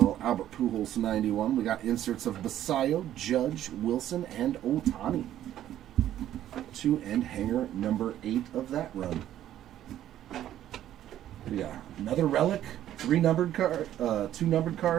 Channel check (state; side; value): quieter; left; 12.0 dB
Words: Albert Pujols 91. We got inserts of Basayo, Judge, Wilson, and Ohtani. 2 and hanger number 8 of that run. We got another relic, 3 numbered card, 2 numbered